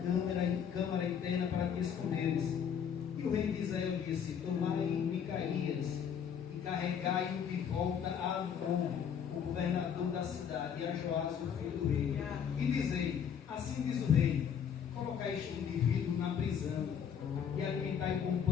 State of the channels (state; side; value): quieter; right; 7.9 dB